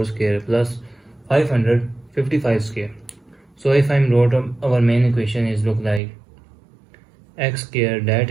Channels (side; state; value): left; drops out; at 6.0 s